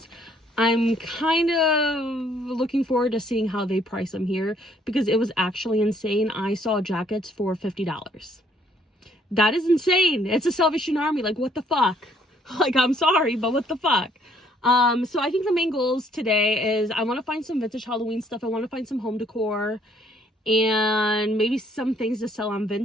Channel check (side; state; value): both; normal; correlation 0.65